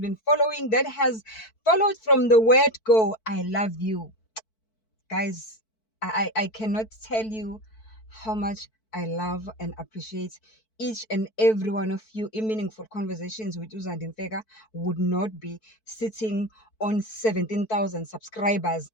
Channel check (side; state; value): right; late; 4.5 ms